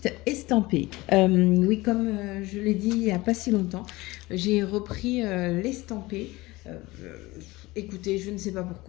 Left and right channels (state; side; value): quieter; right; 20.6 dB